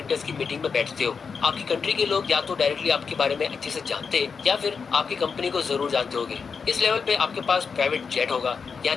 की मीटिंग में बैठते हो। आपकी कंट्री के लोग या तो डायरेक्टली आपके बारे में अच्छे से जानते हैं या फिर आपकी कंपनी को जरूर जानते होंगे। इस लेवल पे आपके पास प्राइवेट जेट होगा, यहाँ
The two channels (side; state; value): right; quieter; 5.7 dB